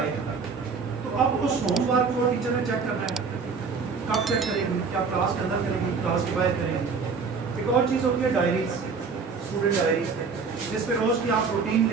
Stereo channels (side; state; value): left; quieter; 5.1 dB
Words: تو اب اس ہوم ورک کو ٹیچر نے چیک کرنا ہے. کب چیک کرے گی؟ کیا کلاس کے اندر کرے گی، کلاس کے باہر کرے گی؟ ایک اور چیز ہوتی ہے ڈائریز، اسٹوڈنٹ ڈائریز، جس پہ روز کی آپ روٹین